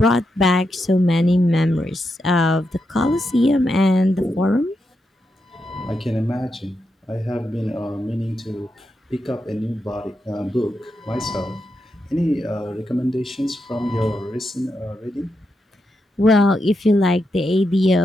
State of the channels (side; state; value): both; normal; correlation 0.85